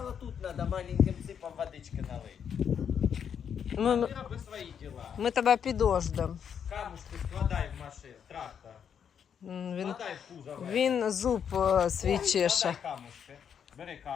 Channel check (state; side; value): quieter; right; 7.8 dB